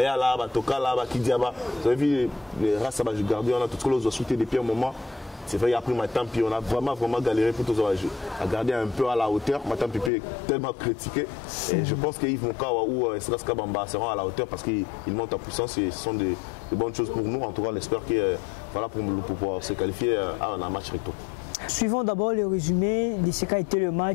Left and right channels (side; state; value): right; drops out; at 10.1 s